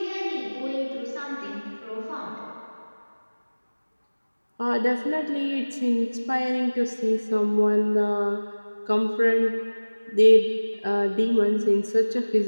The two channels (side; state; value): both; inverted; correlation -1.00